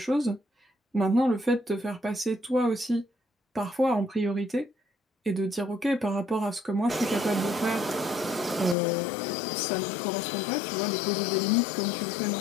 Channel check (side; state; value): right; drops out; at 8.8 s